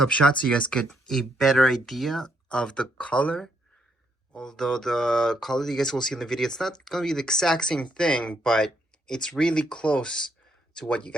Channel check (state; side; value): normal; both; correlation 0.74